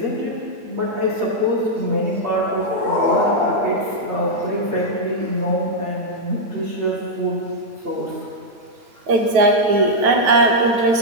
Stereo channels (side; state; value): left; late; 9.2 ms